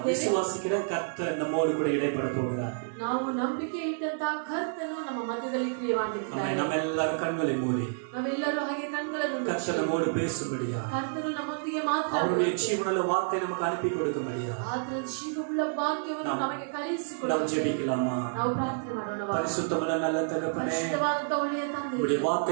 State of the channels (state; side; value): silent; left; digital silence